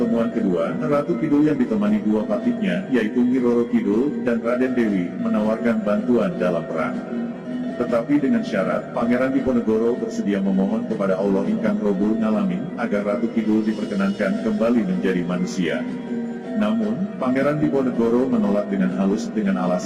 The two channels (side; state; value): both; identical; correlation 1.00